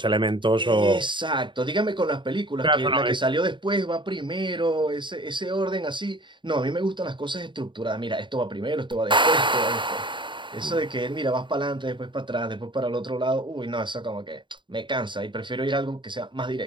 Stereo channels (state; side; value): late; left; 0.23 ms